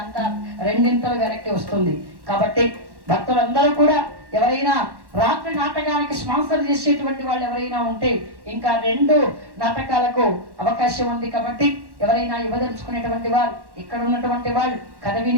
2 ఇంతలు వెనక్కి వస్తుంది. కాబట్టి భక్తులందరూ కూడా ఎవరైనా రాత్రి నాటకానికి స్పాన్సర్ చేసేటువంటి వాళ్ళు ఎవరైనా ఉంటే ఇంకా 2 నాటకాలకు అవకాశం ఉంది. కాబట్టి ఎవరైనా ఇవ్వదలుచుకునేటువంటి వారు, ఇక్కడ ఉన్నటువంటి వాళ్ళు, కథ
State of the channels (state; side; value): late; left; 1.1 ms